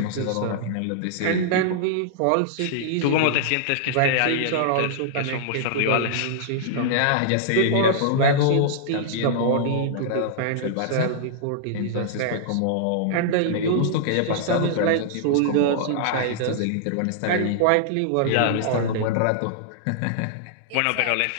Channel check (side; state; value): both; different; correlation -0.01